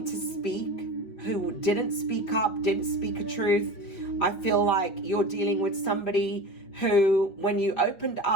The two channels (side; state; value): right; late; 5.7 ms